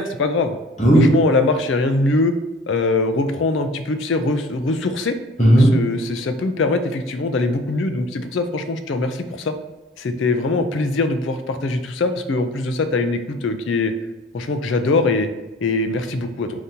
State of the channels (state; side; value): normal; both; correlation 0.47